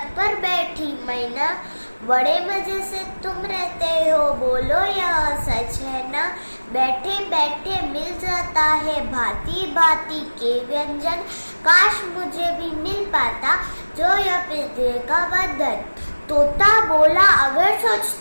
पर बैठी मैना, बड़े मजे से तुम रहते हो, बोलो यह सच है ना। बैठे बैठे मिल जाता है भांति भांति के व्यंजन, काश मुझे भी मिल पाता जो यह पिंजरे का बंधन। तोता बोला अगर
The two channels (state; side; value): inverted; both; correlation -1.00